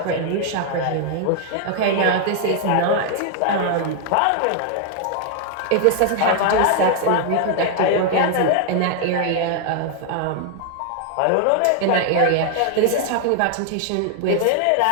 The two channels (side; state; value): both; different; correlation 0.00